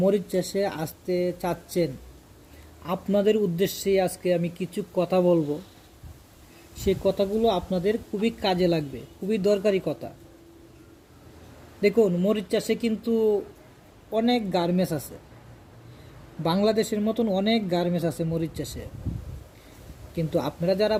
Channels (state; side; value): identical; both; correlation 1.00